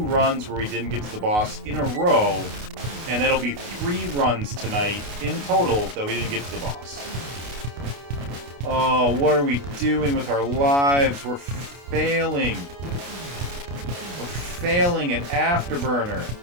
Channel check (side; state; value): left; late; 29 ms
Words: where we didn't get to the boss in a row, and that'll be 3 runs tonight in total that we didn't get to the boss. Oh, what are we doing with our lives? We're failing. We're failing at Afterburner.